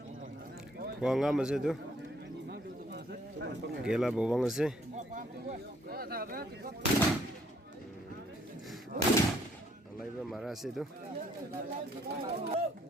Buang apa sih tu? Gela buang sih. Alai bermarah sih tu.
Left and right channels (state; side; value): normal; both; correlation 0.66